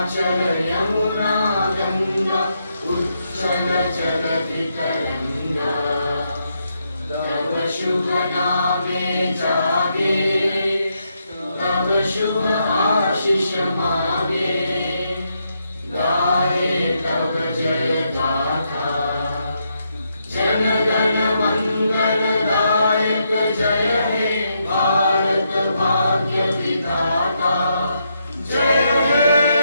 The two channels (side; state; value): both; inverted; correlation -0.79